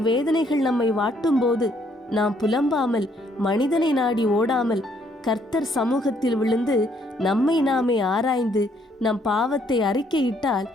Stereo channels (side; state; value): both; normal; correlation 0.68